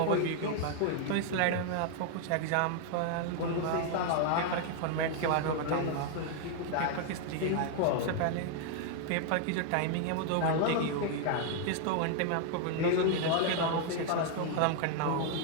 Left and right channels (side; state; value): both; different; correlation 0.00